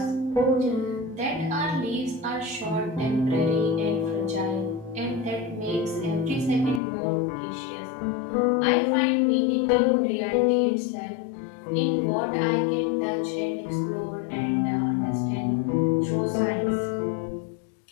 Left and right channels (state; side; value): drops out; right; at 6.8 s